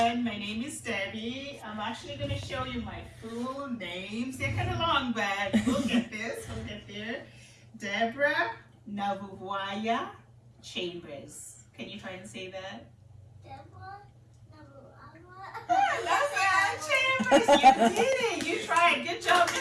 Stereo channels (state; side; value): identical; both; correlation 1.00